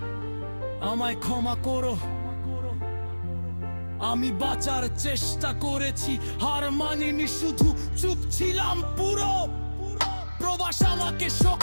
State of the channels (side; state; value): both; inverted; correlation -1.00